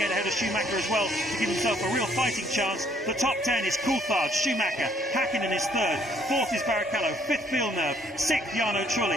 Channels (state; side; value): normal; both; correlation 0.65